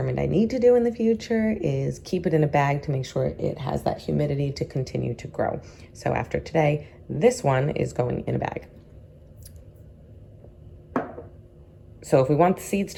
I need to do in the future is keep it in a bag to make sure it has that humidity to continue to grow. So after today, this one is going in a bag. So if we want the seeds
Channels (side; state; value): both; identical; correlation 1.00